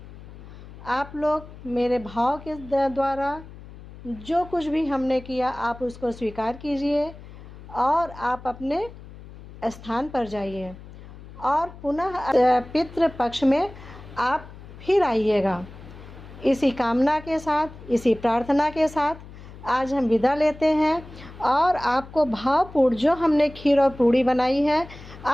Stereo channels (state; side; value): noise; left; hum, 17 dB below the sound